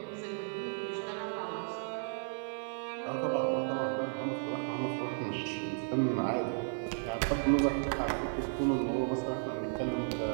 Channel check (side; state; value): left; silent; 55 dB below the other